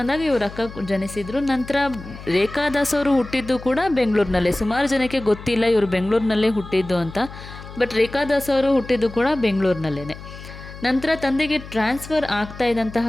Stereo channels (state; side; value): noise; left; hum, 14 dB below the sound